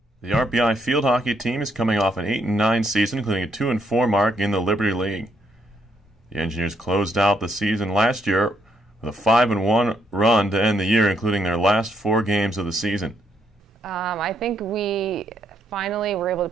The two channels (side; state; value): both; normal; correlation 0.74